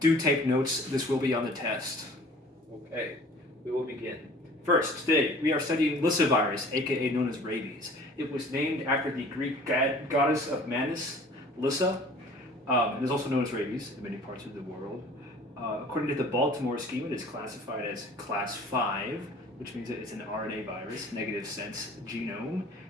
take notes, this will be on the test. Okay, we will begin. First, today we are studying Lyssavirus, aka known as rabies. It was named after the Greek goddess of madness, Lyssa. It is also known as rabies in many parts of the world. According to the Baltimore scheme, it is classified as class 5, which means that it's an RNA virus, negative sense genome,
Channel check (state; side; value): normal; both; correlation 0.48